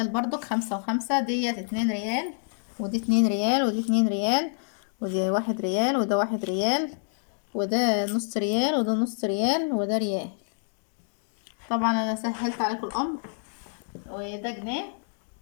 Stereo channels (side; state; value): right; silent; 60 dB below the other